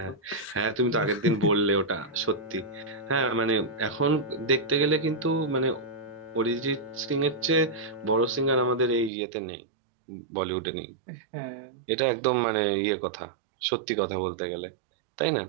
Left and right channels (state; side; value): drops out; left; at 9.1 s